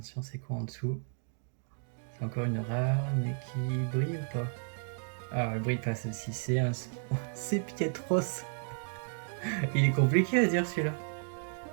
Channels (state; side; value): silent; left; 56 dB below the other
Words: c'est quoi en dessous? C'est encore une rare, mais qui brille ou pas? Ah, elle brille pas celle-ci. C'est Pietros. Il est compliqué à dire celui-là.